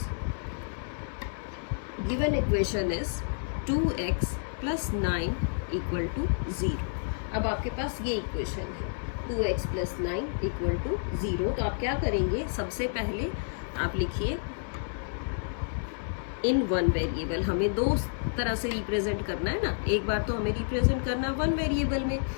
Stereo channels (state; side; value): silent; right; digital silence